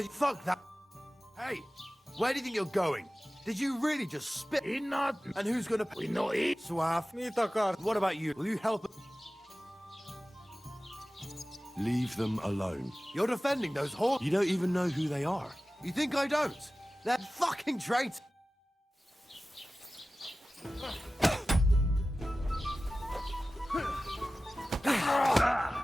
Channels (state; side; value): normal; both; correlation 0.96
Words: you... Fuck that... Hey, where do you think you're going? Did you really just spit? Not... And who's gonna... We know it. Suave. What about you? Will you help... Leave them alone. You're defending those horses. You don't even know who they are. You think I don't? They're fucking traitors.